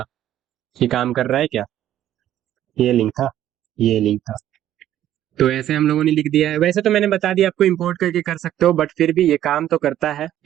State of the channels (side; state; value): left; quieter; 12.0 dB